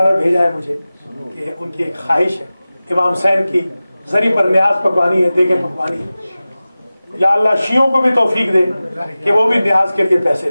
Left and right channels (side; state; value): both; inverted; correlation -0.96